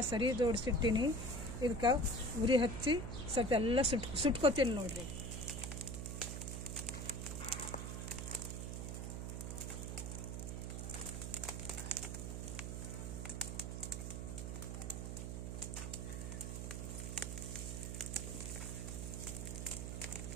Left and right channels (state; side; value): noise; right; hum, 4 dB below the sound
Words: ಸರಿ ಜೋಡಿಸಿಟ್ಟಿನಿ. ಇದಕ್ಕೆ ಉರಿ ಹಚ್ಚಿ ಸ್ವಲ್ಪ ಎಲ್ಲ ಸುಟ್ಕೋತೀನಿ ನೋಡ್ರಿ.